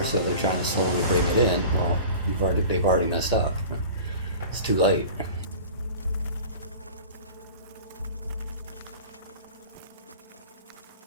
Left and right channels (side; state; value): both; inverted; correlation -0.39